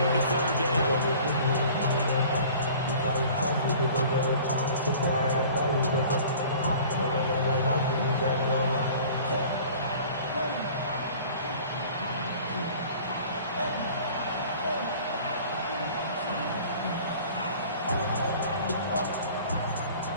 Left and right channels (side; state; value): both; inverted; correlation -0.46